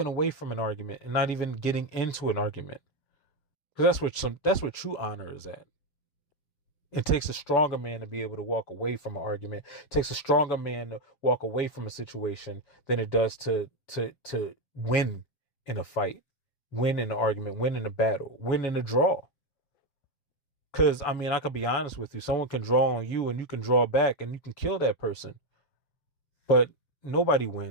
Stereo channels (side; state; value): right; late; 7.0 ms